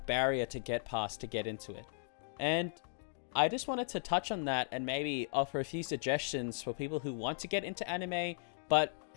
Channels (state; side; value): silent; right; digital silence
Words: barrier to get past to get into it. And I just wanted to touch on that and maybe offer a few suggestions for people who want to get into anime, but